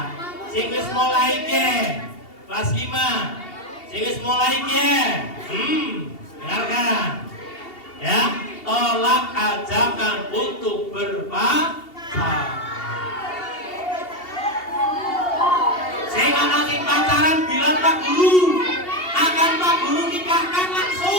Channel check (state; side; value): late; right; 2.8 ms